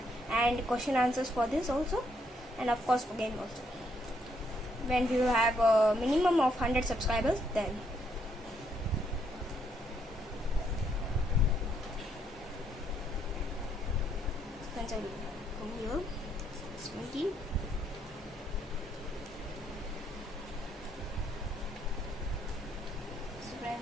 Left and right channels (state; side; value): normal; both; correlation 0.73